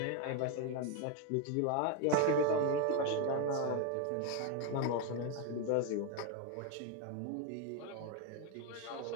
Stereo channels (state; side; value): different; both; correlation 0.02